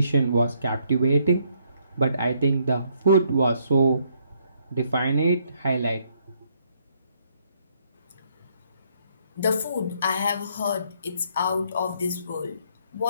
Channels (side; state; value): both; inverted; correlation -0.71